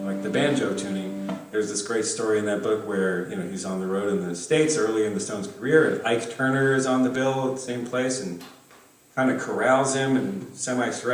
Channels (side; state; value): both; identical; correlation 1.00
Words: like the banjo tuning. There's this great story in that book where, you know, he's on the road in the States early in the Stones' career, and Ike Turner is on the bill at the same place and kind of corrals him and